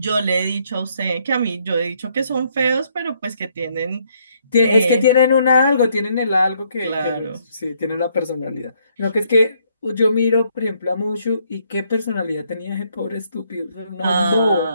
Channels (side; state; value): both; inverted; correlation -0.70